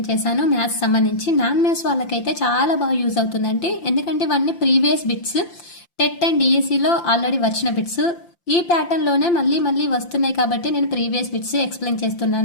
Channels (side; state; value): right; late; 5.8 ms